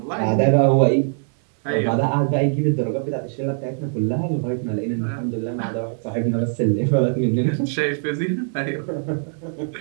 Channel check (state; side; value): silent; left; 64 dB below the other